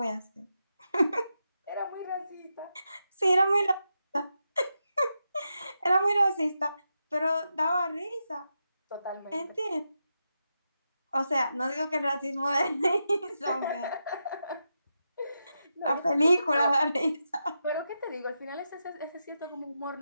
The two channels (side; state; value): both; inverted; correlation -0.87